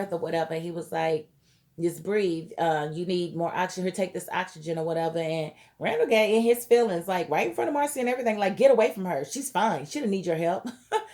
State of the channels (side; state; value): both; identical; correlation 1.00